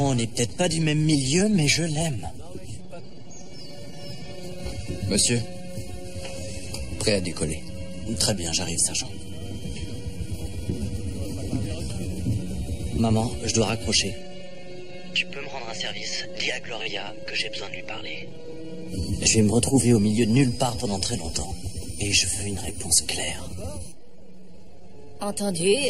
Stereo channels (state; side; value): identical; both; correlation 1.00